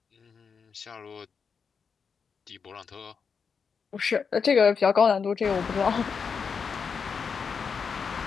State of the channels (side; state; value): right; quieter; 5.9 dB